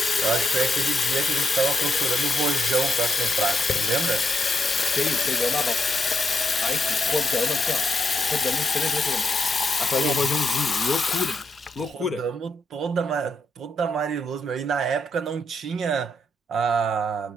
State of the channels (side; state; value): both; normal; correlation 0.80